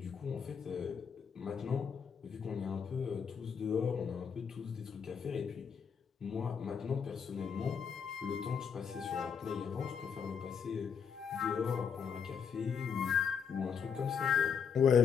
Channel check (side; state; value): right; quieter; 6.8 dB